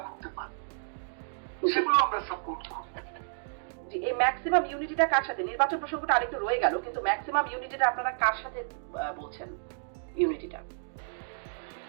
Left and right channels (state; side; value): silent; left; digital silence